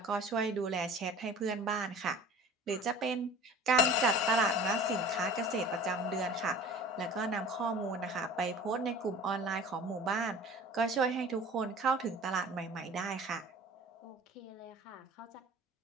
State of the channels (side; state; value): both; normal; correlation 0.42